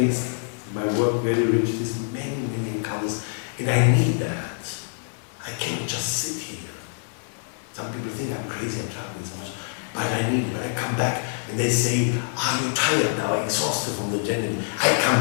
my work very rich. There's many encounters, and I need that. I cannot just sit here. Some people think I'm crazy, I'm traveling so much, but I need it. When I come back and they say, are you tired now, exhausted from the journey? I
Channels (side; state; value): right; silent; 61 dB below the other